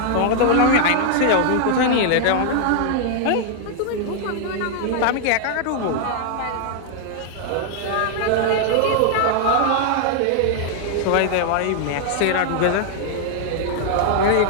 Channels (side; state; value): both; different; correlation 0.00